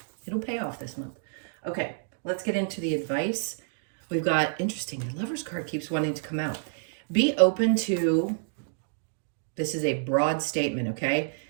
It'll pay off this month. Okay, let's get into the advice. We've got, interesting, the Lover's card keeps wanting to come out. Be open to, this is a broad statement, okay?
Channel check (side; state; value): left; silent; digital silence